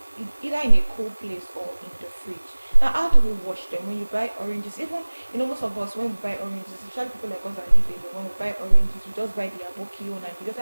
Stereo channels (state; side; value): inverted; both; correlation -1.00